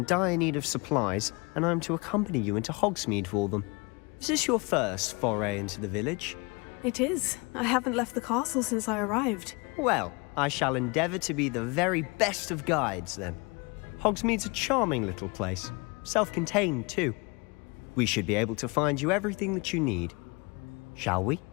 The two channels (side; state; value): right; quieter; 28.8 dB